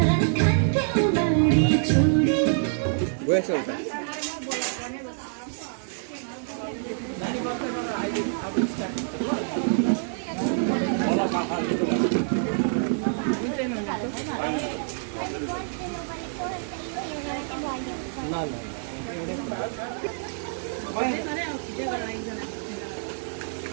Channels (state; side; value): silent; left; digital silence